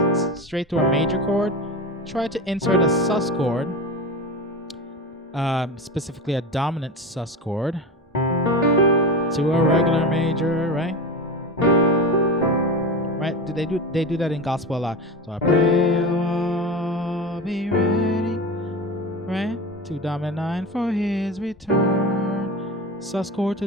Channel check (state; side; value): normal; both; correlation 0.25